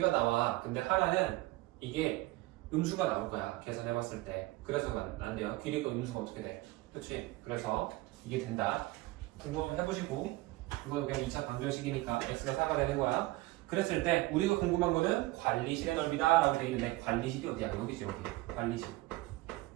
나와. 근데 하나는 이게 음수가 나올 거야. 계산해봤을 때. 그래서 안 돼요. 길이가 음수가 어떻게 돼? 그치? 그래서 이게 된다. 궁금하면 해보시고 이거 그냥 2차 방정식이니까 x가 4가 되는 거야. 그랬을 때 우리가 궁금한 거는 관리실의 넓이다 라고 돼 있는데 관리실이 어디야? 여기지 여기. 관리실.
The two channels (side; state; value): left; quieter; 19.8 dB